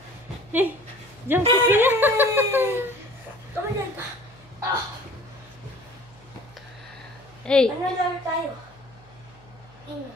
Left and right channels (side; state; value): left; noise; hum, 28 dB below the sound